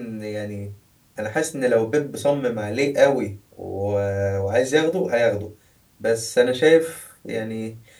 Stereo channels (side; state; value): both; identical; correlation 1.00